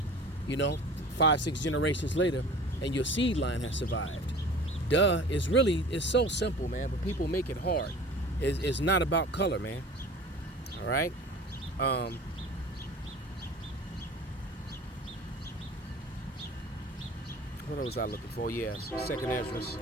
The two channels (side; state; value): both; normal; correlation 0.42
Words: 5-6 generations later, and your seed line has survived? Duh. It's so simple, man, but people make it hard. It's not about color, man. All right. What was I looking for? Yes, 2nd Ezra.